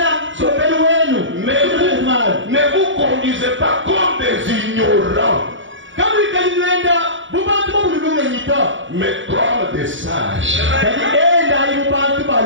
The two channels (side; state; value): left; late; 0.55 ms